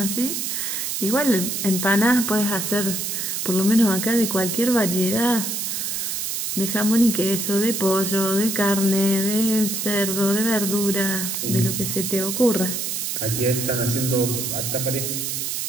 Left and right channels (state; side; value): noise; right; hiss, 2 dB below the sound